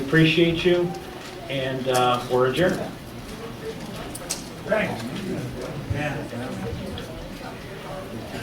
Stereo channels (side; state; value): both; identical; correlation 1.00